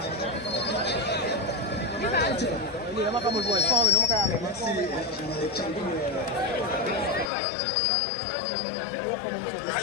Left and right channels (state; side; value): drops out; right; at 7.3 s